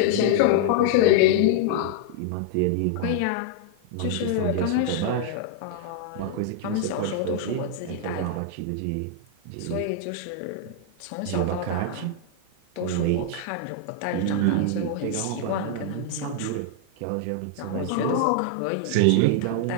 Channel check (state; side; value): different; both; correlation -0.01